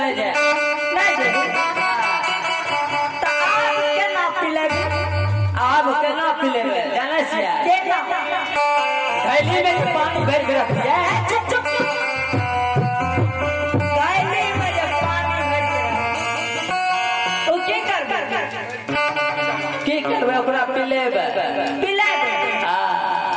जा नहीं दे तो आप के ना पिलेगे आप केना पिलेबे जाने छियै देखो थैली में तो पानी भर के रख दिया चुप चुप गायले में जब पानी भर के ओ की करबे की करबे ओकरा पिलेबे पिला दे हां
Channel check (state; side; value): identical; both; correlation 1.00